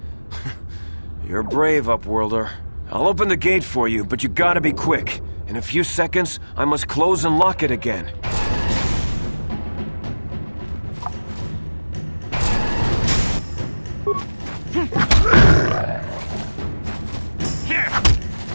You're brave, Upworlder. I'll open the gate for you, but you gotta be quick. In a few seconds, I must close and lock it again.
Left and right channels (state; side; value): inverted; both; correlation -1.00